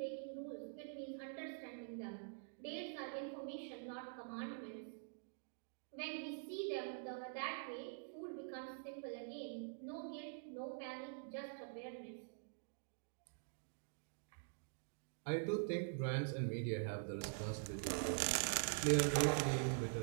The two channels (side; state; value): left; silent; digital silence